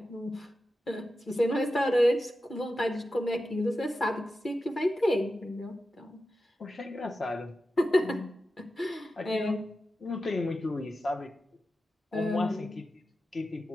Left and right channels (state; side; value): normal; both; correlation 0.92